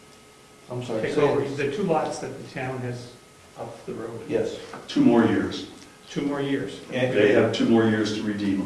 I'm sorry. take say over. it. The 2 lots that the town has up the road, Yes. 2 more years. 2 more years. And- They have 2 more years to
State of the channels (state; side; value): identical; both; correlation 1.00